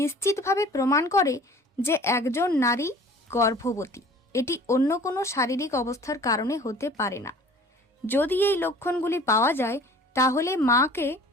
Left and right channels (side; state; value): both; normal; correlation 0.47